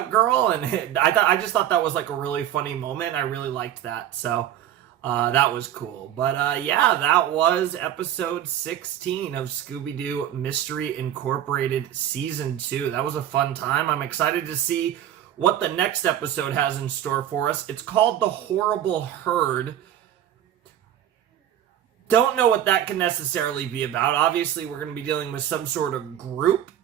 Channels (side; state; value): left; quieter; 11.1 dB